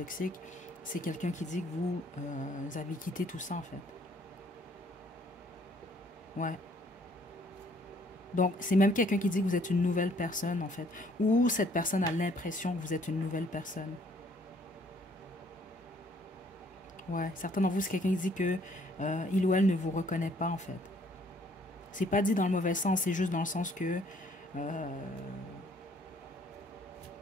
c'est quelqu'un qui dit que vous avez quitté tout ça, en fait. Ouais. Donc, c'est même quelqu'un qui dit que vous êtes une nouvelle personne, en fait. Ou cette personne a l'impression que vous êtes une nouvelle personne. Ouais. Certains d'entre vous, c'est quelqu'un qui dit que il ou elle ne vous reconnaît pas, en fait. C'est pas dit dans le mauvais sens, c'est juste dans le sens que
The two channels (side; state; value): both; normal; correlation 0.62